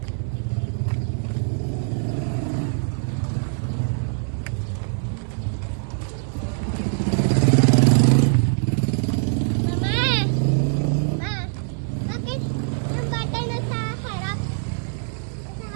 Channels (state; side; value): silent; left; 63 dB below the other